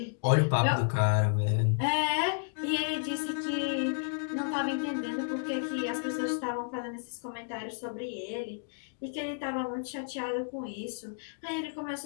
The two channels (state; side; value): silent; right; digital silence